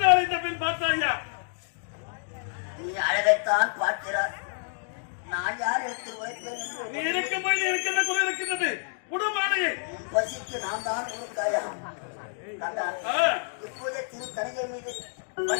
இந்த பெண். பார்த்தாயா, நீ அழகைத்தான் பார்க்கிறார். நான் யார் எடுத்து வைப்பேன்? நீ இருக்கும்போது இருக்கின்ற குறை இருக்கின்றது. உடம்பாளையே பசிக்கு நான் தான் கொடுத்தாயா கண்டா. இப்போதே திரு தனிகை மீது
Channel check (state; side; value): silent; right; digital silence